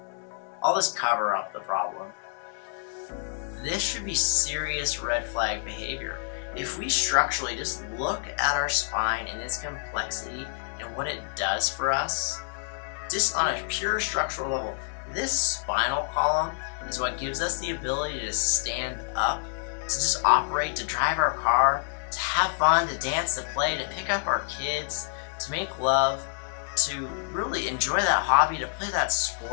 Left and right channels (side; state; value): right; silent; digital silence